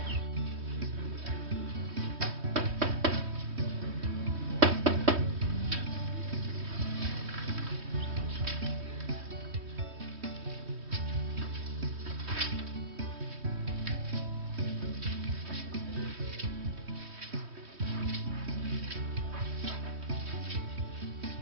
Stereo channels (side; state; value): left; late; 3.2 ms